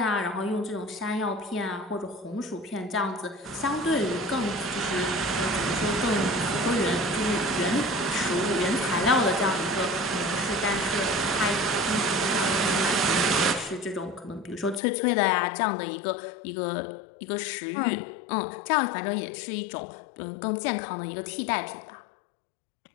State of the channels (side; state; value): right; drops out; at 14.8 s